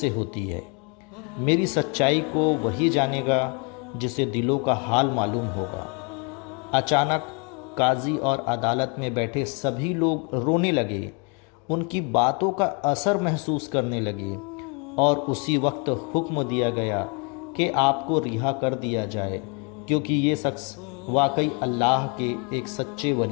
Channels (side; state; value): right; quieter; 35.2 dB